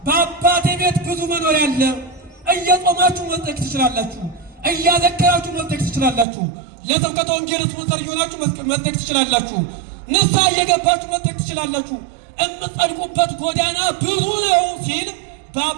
በአባቴ ቤት ብዙ መኖሪያ አለ። እየጾማችሁ መጽደቅ ትችላላችሁ። እያዘከራችሁ መጽደቅ ትችላላችሁ። ለስብከተ ወንጌል ስፖንሰር እየሆናችሁ መጽደቅ ትችላላችሁ። ንስሐ እየገባችሁ መጽደቅ ትችላላችሁ። የምትጸድቁበት ጎዳና ብዙ ነው ሲል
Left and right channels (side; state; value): left; drops out; at 6.2 s